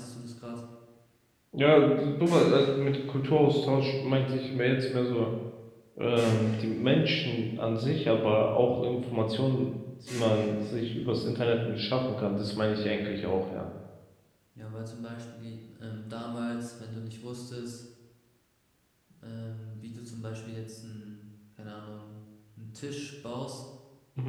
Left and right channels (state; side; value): identical; both; correlation 1.00